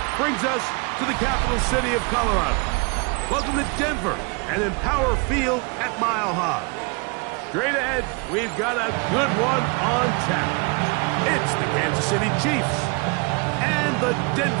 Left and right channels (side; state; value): left; quieter; 31.6 dB